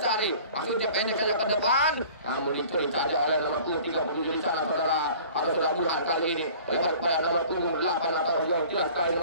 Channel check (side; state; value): both; inverted; correlation -0.47